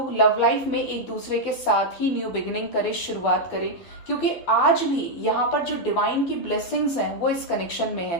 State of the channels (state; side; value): late; right; 12 ms